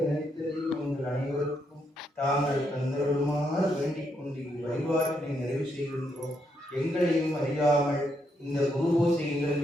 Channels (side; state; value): both; normal; correlation 0.78